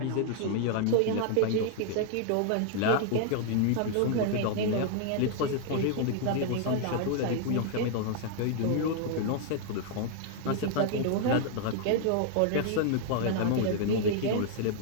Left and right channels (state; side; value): different; both; correlation 0.00